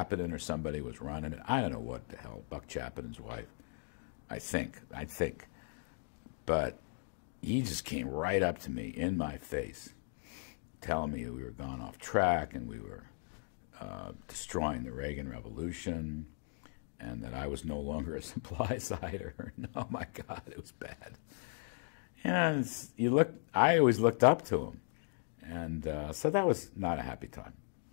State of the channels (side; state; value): right; silent; digital silence